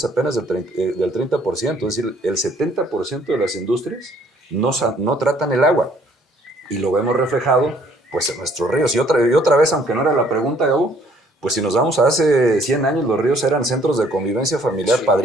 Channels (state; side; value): normal; both; correlation 0.61